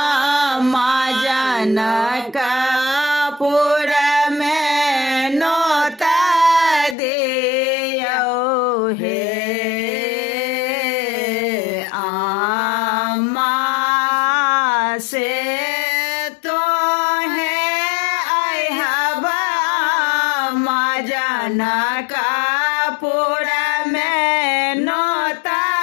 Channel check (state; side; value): drops out; right; at 7.0 s